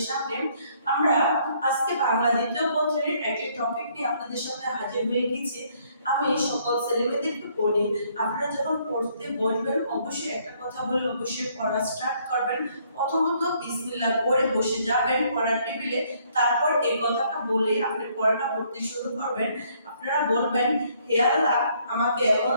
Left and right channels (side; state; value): both; inverted; correlation -0.66